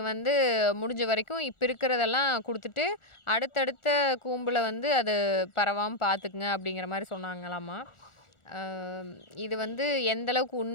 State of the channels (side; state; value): right; late; 1.4 ms